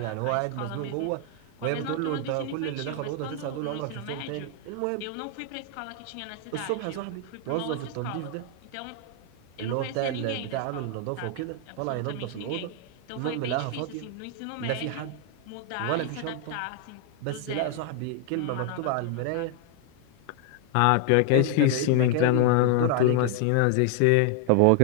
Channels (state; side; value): different; both; correlation 0.00